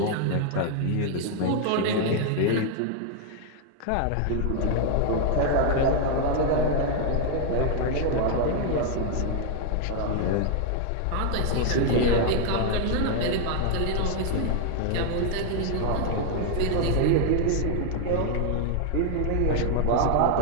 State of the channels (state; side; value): different; both; correlation 0.00